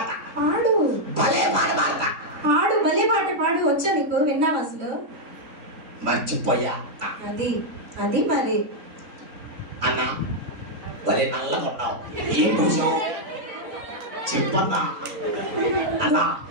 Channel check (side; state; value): left; late; 3.5 ms